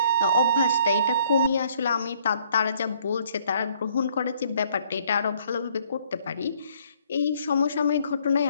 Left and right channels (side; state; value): both; inverted; correlation -0.63